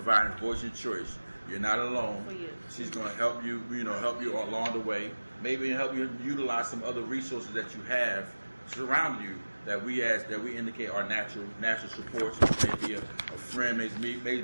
voice and choice. You're not alone. She's going to help you, help you along the way. Maybe help you utilize some other resources that you have surround you that we indicate are natural supports. Maybe a friend,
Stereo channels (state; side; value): inverted; both; correlation -1.00